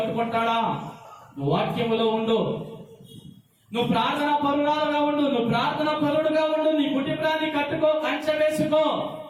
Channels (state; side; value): identical; both; correlation 1.00